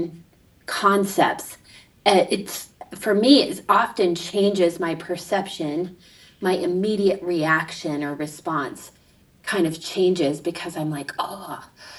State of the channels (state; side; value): identical; both; correlation 1.00